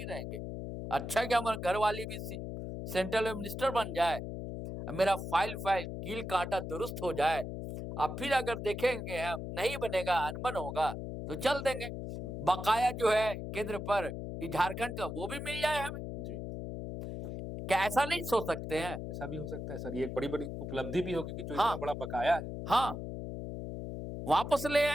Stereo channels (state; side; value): noise; left; hum, 6 dB below the sound